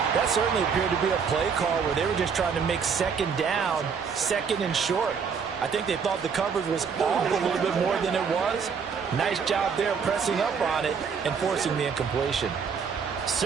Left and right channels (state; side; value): quieter; left; 6.2 dB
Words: That certainly appeared to be a play call where they were just trying to make second down, second and short. I think they thought the coverage was off a little bit more than it was. Nice job there pressing up on it and forcing the incompletion.